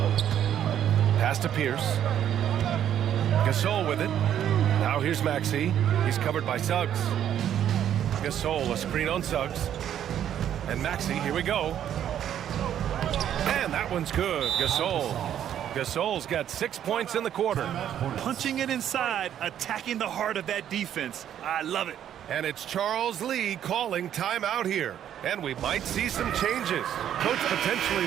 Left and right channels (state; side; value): quieter; left; 10.2 dB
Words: Pass to Pierce. Gasol with it. Now here's Maxey. He's covered by Suggs. Gasol, a screen on Suggs. And Maxey, here we go. And that one's good. Gasol's got 6 points in the quarter. Punching it inside, attacking the heart of that defense. I love it. And it's Charles Lee calling timeout here. And we might see some changes. Coach potentially